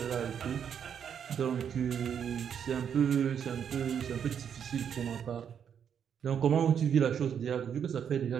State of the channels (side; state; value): left; quieter; 8.1 dB